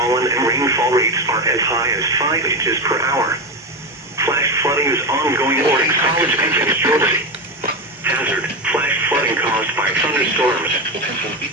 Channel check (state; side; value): normal; both; correlation 0.17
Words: and rainfall rates are as high as 5 inches per hour. Flash flooding is ongoing or expected to begin shortly. Hazard, flash flooding caused by thunderstorms.